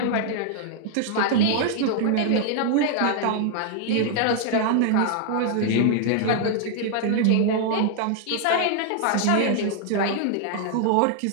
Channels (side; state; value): both; different; correlation 0.00